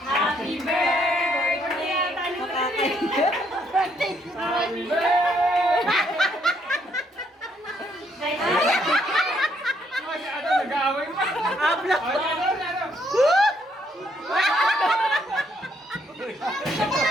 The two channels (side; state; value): both; normal; correlation 0.71